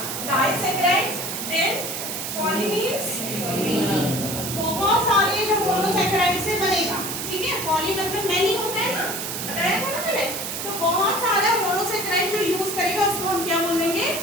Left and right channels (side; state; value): right; noise; hiss, 5 dB below the sound